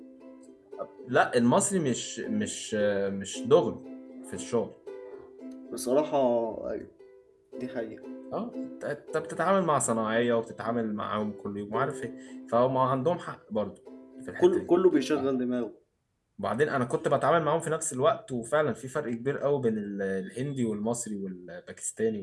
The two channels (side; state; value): both; identical; correlation 1.00